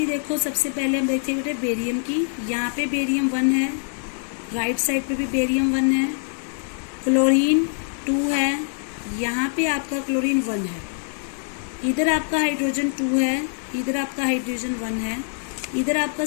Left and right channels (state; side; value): silent; right; 61 dB below the other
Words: देखो, सबसे पहले हम देखते हैं बेरियम की। यहाँ पे बेरियम 1 है, राइट साइड पे भी बेरियम 1 है, क्लोरीन 2 है, यहाँ पे आपका क्लोरीन 1 है, इधर आपका हाइड्रोजन 2 है, इधर आपका हाइड्रोजन 1 है, इधर आपका